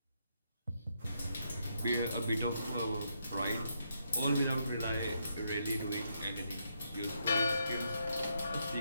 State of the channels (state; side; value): inverted; both; correlation -0.78